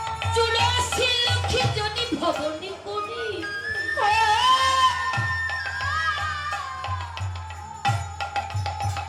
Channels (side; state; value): both; identical; correlation 1.00